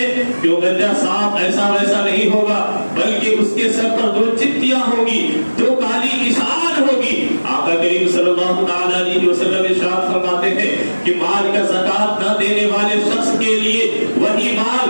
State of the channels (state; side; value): inverted; both; correlation -1.00